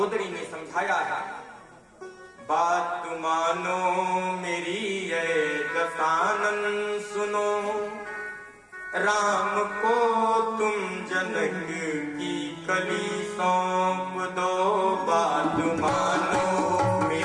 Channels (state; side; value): identical; both; correlation 1.00